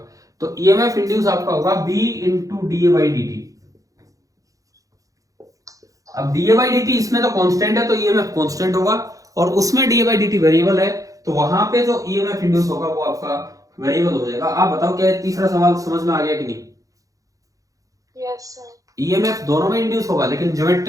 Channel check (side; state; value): left; late; 0.17 ms